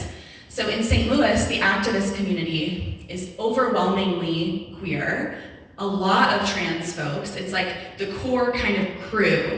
So in St. Louis, the activist community is overwhelmingly queer, a lot of trans folks. It's like the core kind of crew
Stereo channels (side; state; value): both; identical; correlation 1.00